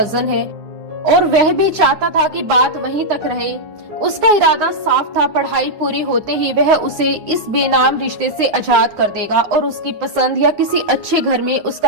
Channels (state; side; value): late; left; 9.5 ms